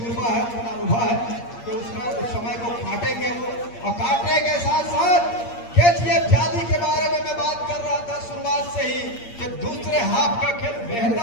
है, उतना अनुभव है कि उसका उस समय को काटेंगे वो, और काटने के साथ साथ केजीएफ जाली के बारे में मैं बात कर रहा था शुरुआत से ही कि दूसरे हाफ का खेल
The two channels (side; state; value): right; late; 8.6 ms